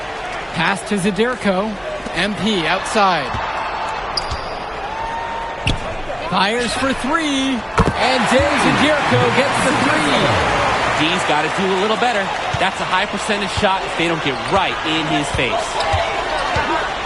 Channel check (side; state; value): both; identical; correlation 1.00